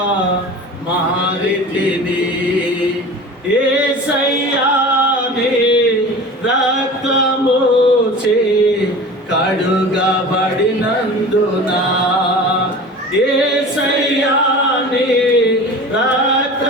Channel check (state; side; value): normal; both; correlation 0.37